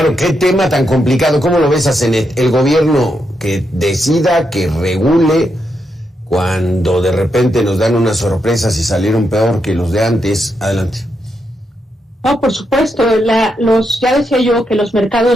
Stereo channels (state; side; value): normal; both; correlation 0.82